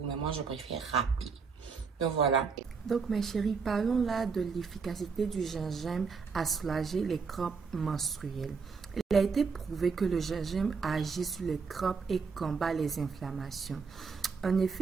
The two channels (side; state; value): left; quieter; 5.2 dB